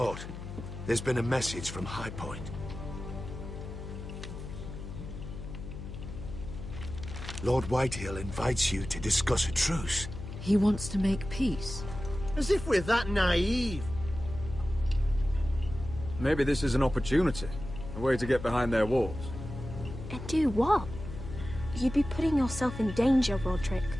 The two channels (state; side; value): noise; left; hum, 10 dB below the sound